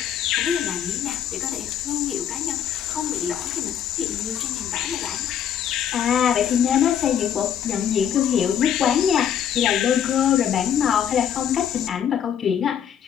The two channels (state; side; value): quieter; right; 9.1 dB